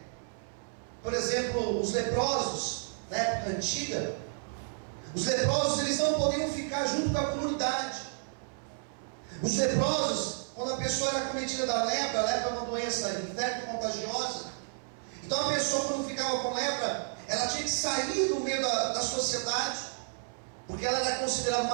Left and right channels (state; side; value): silent; left; 57 dB below the other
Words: por exemplo, os leprosos na época antiga. Os leprosos, eles não podiam ficar junto com a comunidade. Os leprosos, quando a pessoa era acometida da lepra, a lepra é uma doença infecto-contagiosa. Então a pessoa, quando ficava com lepra, ela tinha que sair do meio da sociedade, porque ela era considerada